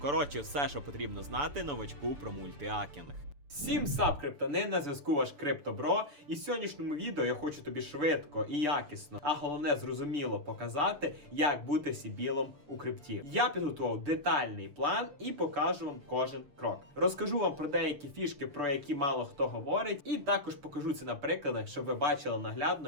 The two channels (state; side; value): late; left; 6.9 ms